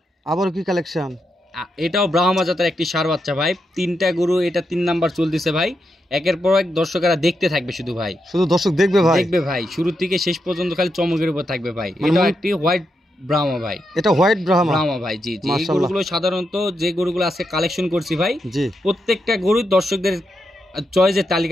আবার কি কালেকশন? এটাও ব্রাহ্মা জাতের একটি ষাঁড় বাচ্চা ভাই। 3টা গরু, এটা 3 নাম্বার চলতেছে ভাই। একের পর এক দর্শকেরা দেখতে থাকবে, শুধু ভাই, শুধু দর্শক দেখবে ভাই। শুরু থেকে শেষ পর্যন্ত খালি চমকের উপর থাকবে ভাই। এটা একটি হোয়াইট ব্রাহ্মা ভাই। এটা হোয়াইট ব্রাহ্মা ভাই। জি জি। এই গরুগুলো সাধারণত যে গরুগুলো আজকে কালেকশন করছি ভাই, প্রত্যেকটা গরু দর্শকদের চয়েসের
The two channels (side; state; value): both; normal; correlation 0.84